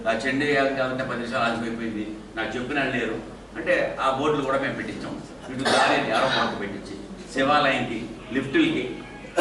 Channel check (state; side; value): identical; both; correlation 1.00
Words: ఆ చెండు కావాలంటే 10 నిమిషాలు ఆగిపోయింది, నాకు చెప్పిన లేరు అంటే ఆ బోర్డులు కూడా మేము పెట్టించాం. ఇటు దారి ఆరో మార్కు పెట్టించి శివాలయంకి లిఫ్టులకి,